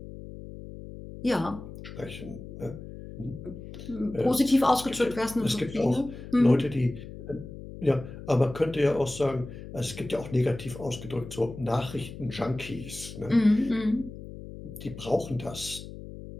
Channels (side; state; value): left; noise; hum, 12 dB below the sound